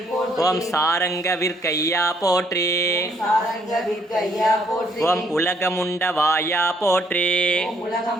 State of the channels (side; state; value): both; normal; correlation 0.67